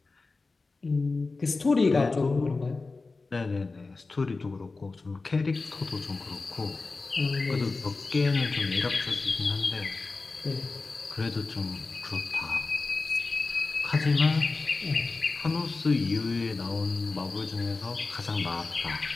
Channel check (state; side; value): quieter; right; 3.8 dB